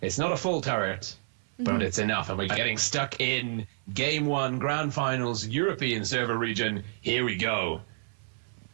it's not a full turret, but it's enough. And we're getting stuck in Game 1, Grand Finals, European server region. Here we go.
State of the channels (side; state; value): left; silent; 58 dB below the other